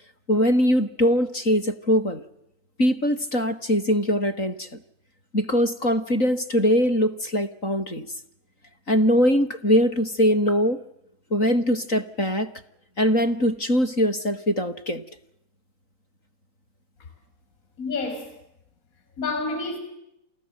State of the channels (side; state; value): right; late; 3.9 ms